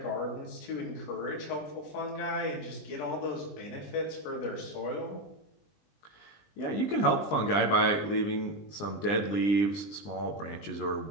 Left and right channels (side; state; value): right; late; 20 ms